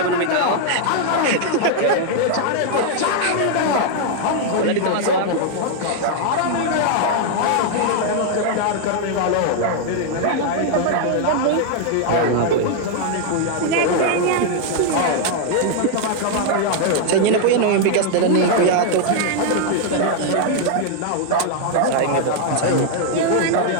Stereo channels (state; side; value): different; both; correlation 0.00